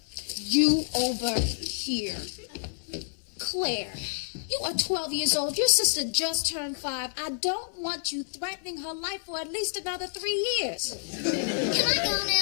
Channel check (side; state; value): right; silent; digital silence